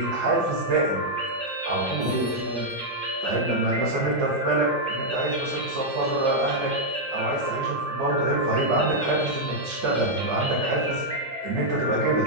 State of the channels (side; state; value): both; normal; correlation -0.03